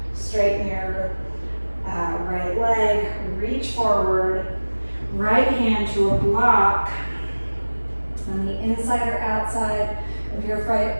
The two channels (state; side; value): inverted; both; correlation -1.00